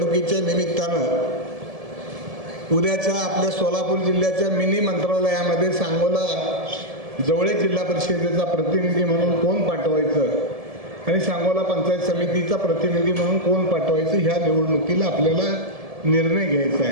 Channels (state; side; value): late; left; 1.7 ms